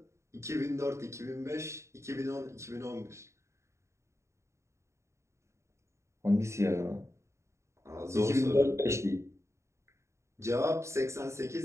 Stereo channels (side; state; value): left; late; 0.14 ms